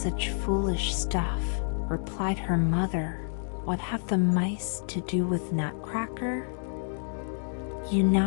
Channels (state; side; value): silent; right; 59 dB below the other